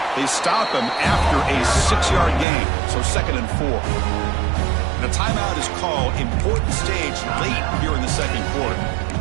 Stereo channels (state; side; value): drops out; left; at 2.5 s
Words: They stop him after a 6-yard gain, so second and 4. And a timeout is called. Important stage late here in the second quarter.